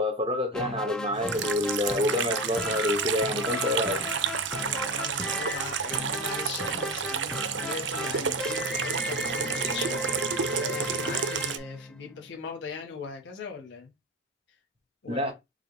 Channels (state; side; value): normal; both; correlation 0.22